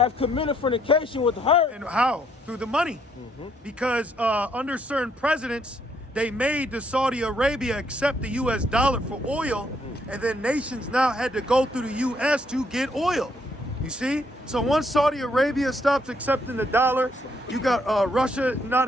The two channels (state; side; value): normal; both; correlation 0.71